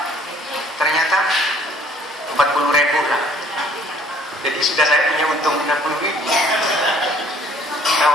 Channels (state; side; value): normal; both; correlation 0.58